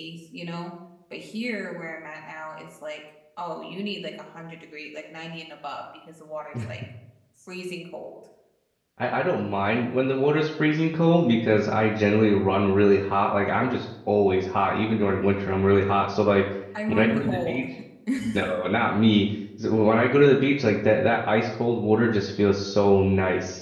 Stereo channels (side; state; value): both; identical; correlation 1.00